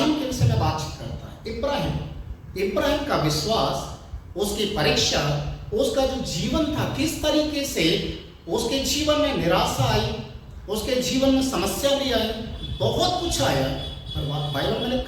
के विषय में बातचीत करता है। इब्राहिम का विश्वास, उसकी परीक्षा, उसका जो जीवन था, किस तरीके से उसके जीवन में निराशा आई, उसके जीवन में समस्या भी आई, बहुत कुछ आया, पर बाइबल में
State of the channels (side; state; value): both; identical; correlation 1.00